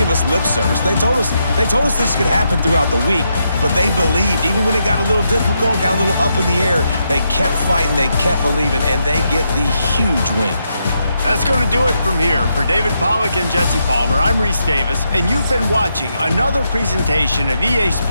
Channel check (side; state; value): both; inverted; correlation -0.81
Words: us lip service. They told us this could happen throughout the week, but they believed. Even when it got a little difficult, got a little up in the air, they kept fighting, they kept believing, and they get the huge win. That's going to do it from here. For David Pollack and Jesse Palmer, I'm Reese Davis, and you've been watching another presentation of EA